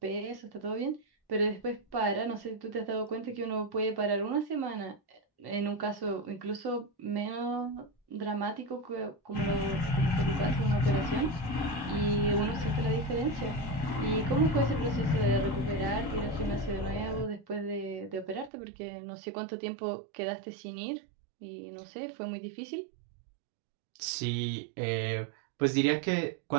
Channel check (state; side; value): drops out; left; at 18.5 s